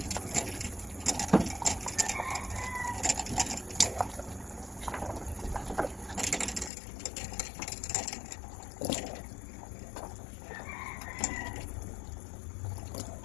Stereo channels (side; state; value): right; drops out; at 6.7 s